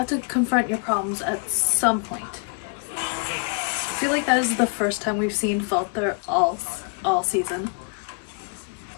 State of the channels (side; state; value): right; quieter; 37.3 dB